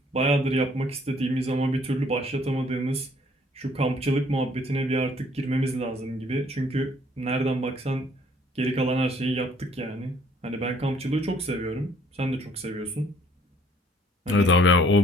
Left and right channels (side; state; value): both; normal; correlation 0.61